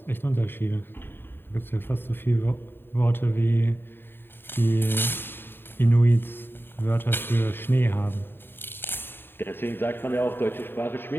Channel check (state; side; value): late; right; 0.10 ms